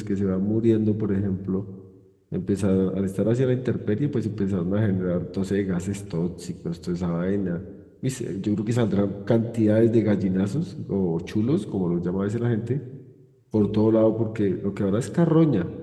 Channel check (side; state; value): both; identical; correlation 1.00